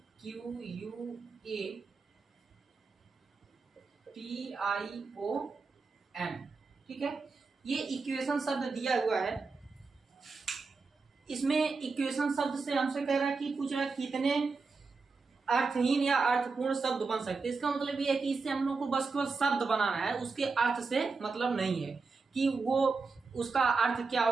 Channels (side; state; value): left; quieter; 4.4 dB